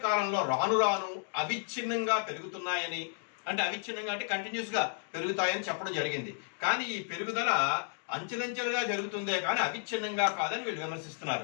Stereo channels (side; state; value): right; silent; 56 dB below the other